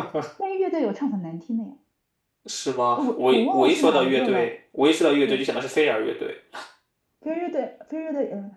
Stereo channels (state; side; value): identical; both; correlation 1.00